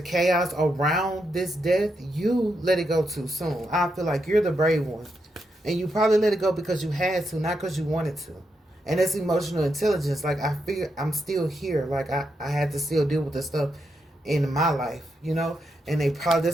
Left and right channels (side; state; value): both; normal; correlation 0.83